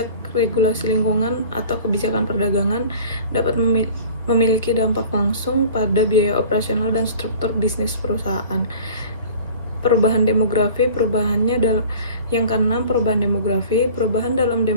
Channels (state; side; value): inverted; both; correlation -0.44